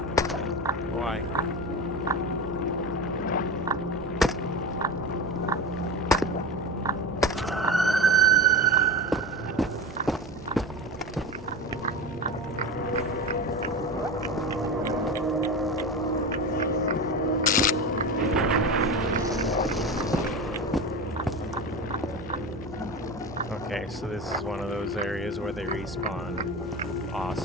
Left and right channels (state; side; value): normal; both; correlation 0.26